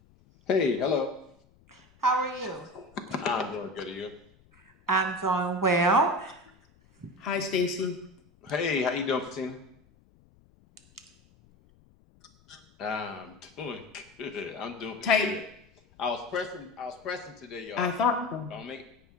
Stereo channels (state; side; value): noise; left; rumble, 30 dB below the sound